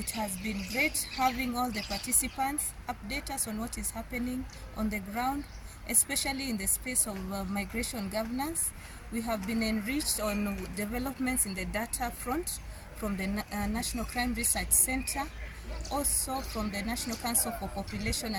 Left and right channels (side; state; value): both; identical; correlation 1.00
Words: has been great having all the participants update us on what is happening on the ground, especially in the space of migration governance. We have been enriched on developments in the data front from the National Crime Research Center, also from the National Council for Population